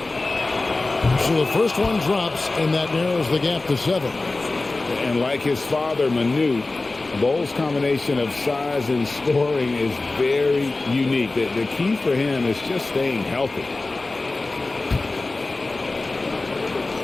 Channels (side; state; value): right; quieter; 3.3 dB